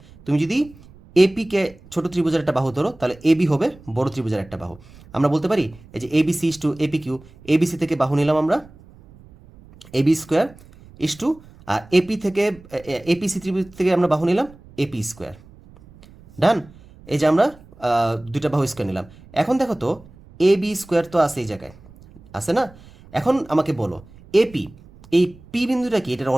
তুমি যদি এপি কে ছোট ত্রিভুজের একটা বাহু ধরো, তাহলে এবি হবে বড় ত্রিভুজের একটা বাহু। আমরা বলতে পারি এই যে ABC is to AP Q, ABC থেকে বাহু নিলাম আমরা এবি স্কোয়ার ইস টু, আর এপি থেকে এপিসি ত্রিভুজ থেকে আমরা বাহু নিলাম এপি স্কোয়ার। ডান। এই যে আমরা দুইটা বাহু স্কোয়ার নিলাম। এখন দেখো তো এ বি স্কোয়ার তো আছে এই জায়গায়, আছে না? এখন আমাকে বলো এপি, এই পি বিন্দুটা কি, এটার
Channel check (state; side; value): noise; right; rumble, 23 dB below the sound